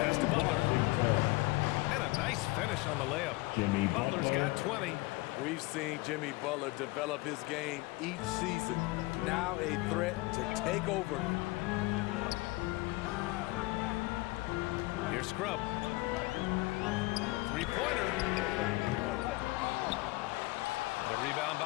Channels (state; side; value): quieter; right; 21.9 dB